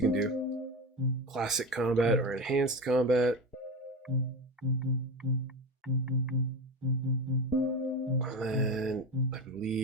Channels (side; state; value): both; normal; correlation 0.22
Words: can do. Classic combat or enhanced combat. And then, I